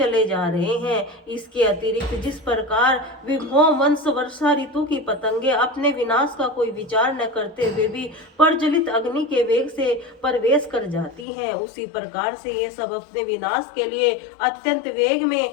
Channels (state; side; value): drops out; right; at 11.2 s